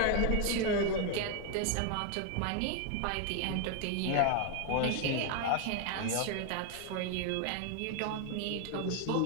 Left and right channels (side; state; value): both; different; correlation 0.01